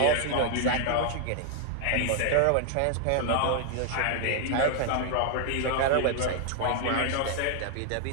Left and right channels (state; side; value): different; both; correlation 0.00